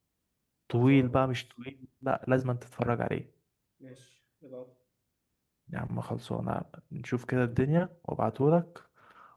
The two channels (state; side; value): identical; both; correlation 1.00